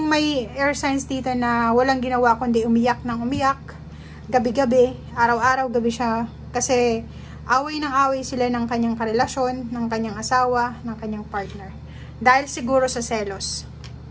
may air signs dito na walang ginawa kundi umiyak ng umiyak, gabi-gabi, araw-araw, gabi siya. Kasi away ng away sila ng kanyang karelasyon, ng kanyang asawa, ng kanyang partner. Dahil siguro sa selos.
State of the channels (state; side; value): identical; both; correlation 1.00